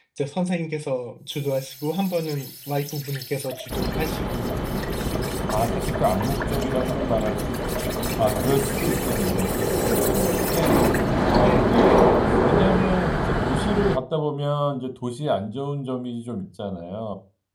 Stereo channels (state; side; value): identical; both; correlation 1.00